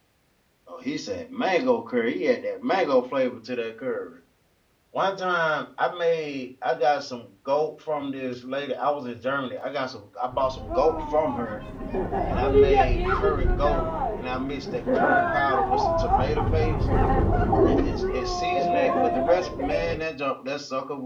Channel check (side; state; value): both; identical; correlation 1.00